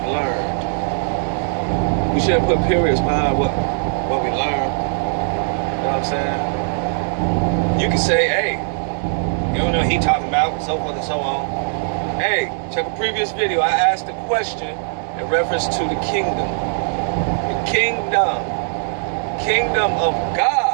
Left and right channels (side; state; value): left; silent; digital silence